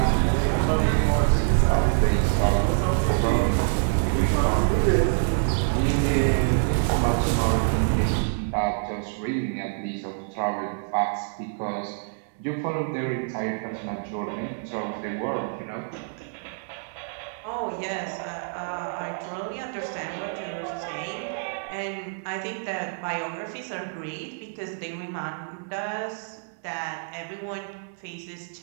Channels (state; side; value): silent; left; digital silence